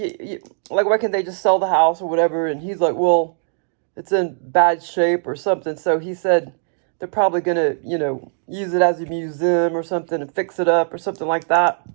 why can't they just sell the house or whatever? And he's like, well, it's in bad shape or something. So he said they're probably going to, you know, use it as a museum or something and fix it up or something like that.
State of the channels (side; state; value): left; silent; digital silence